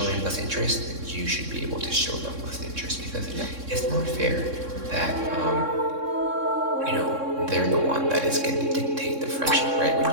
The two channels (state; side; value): late; left; 3.6 ms